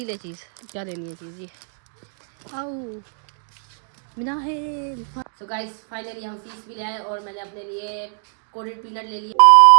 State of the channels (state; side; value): silent; left; digital silence